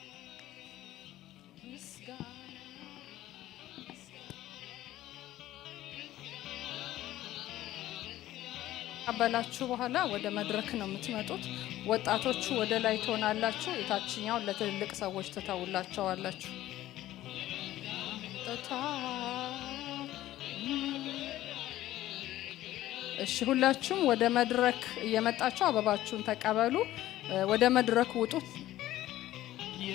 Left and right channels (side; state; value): right; quieter; 14.6 dB